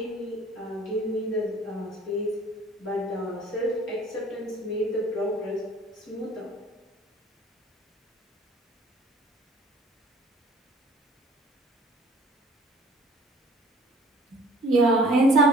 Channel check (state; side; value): normal; both; correlation 0.52